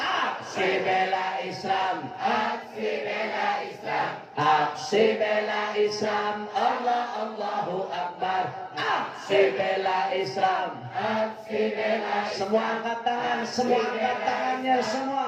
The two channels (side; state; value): both; identical; correlation 1.00